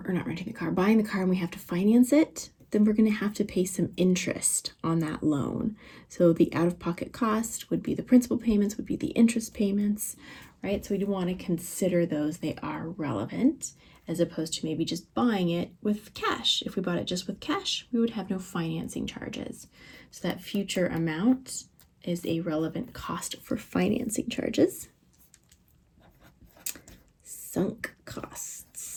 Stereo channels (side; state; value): both; identical; correlation 1.00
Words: buying the car and we have to finance it, then we're going to have to pay some interest on that loan. So the out-of-pocket cost would be the principal payments, would be the interest payments, right? So we do want to consider those. They are relevant, as opposed to maybe just buying it with cash. If we bought it just with cash, we would have no financing charges. So that future amount is a relevant cost for financing charges. Sunk